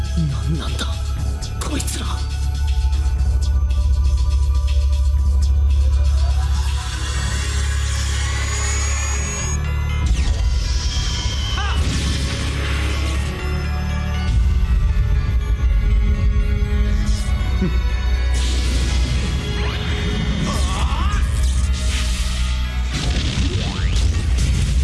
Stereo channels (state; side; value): identical; both; correlation 1.00